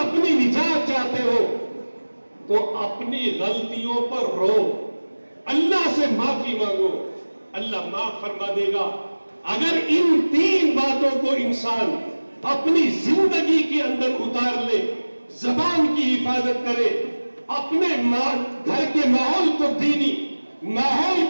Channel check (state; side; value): inverted; both; correlation -1.00